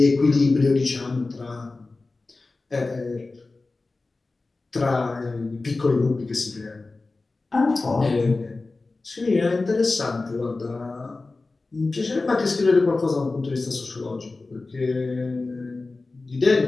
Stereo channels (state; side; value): quieter; right; 3.5 dB